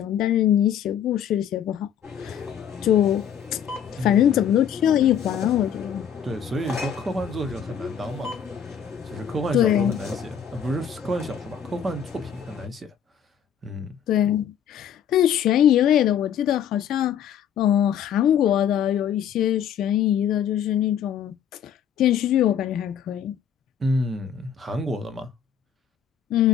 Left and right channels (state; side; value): quieter; right; 8.6 dB